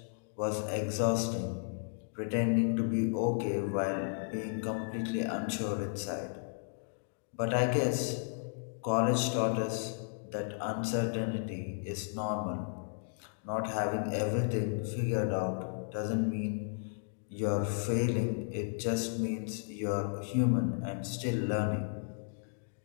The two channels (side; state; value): right; silent; digital silence